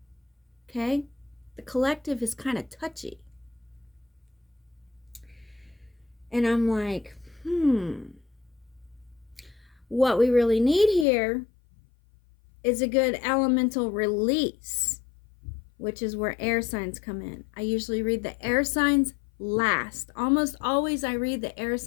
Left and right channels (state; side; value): drops out; right; at 11.1 s